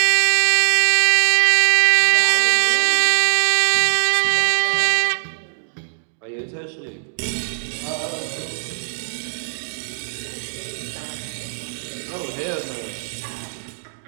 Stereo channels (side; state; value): left; silent; digital silence